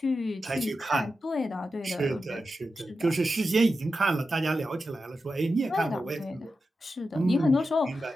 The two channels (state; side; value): normal; both; correlation 0.90